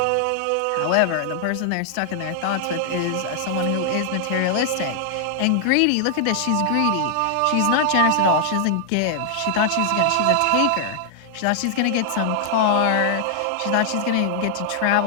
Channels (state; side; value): different; both; correlation 0.00